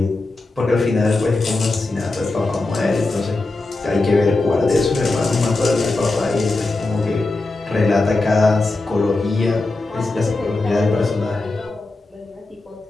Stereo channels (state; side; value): quieter; right; 3.2 dB